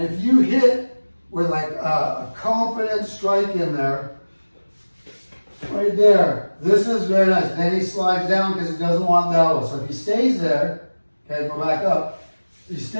if you hit with like a confident strike in there, right there. This is very nice. Then he slides down because he doesn't want the elbow. So if he stays there, okay, go back up. If he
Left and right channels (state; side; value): inverted; both; correlation -1.00